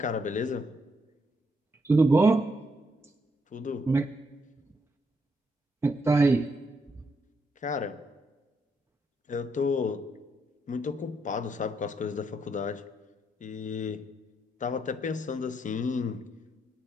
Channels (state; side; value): normal; both; correlation 0.77